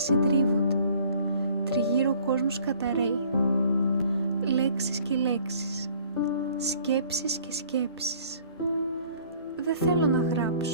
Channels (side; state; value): both; inverted; correlation -0.55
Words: συντρίβονται, τριγύρω ο κόσμος καταραίει. Λέξεις και λέξεις, σκέψεις και σκέψεις. Δεν θέλω να